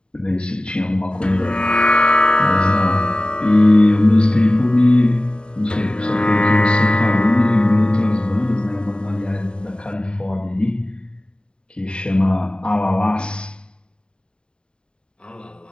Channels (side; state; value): right; late; 0.050 ms